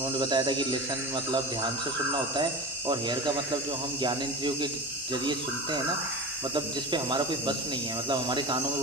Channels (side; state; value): both; normal; correlation 0.31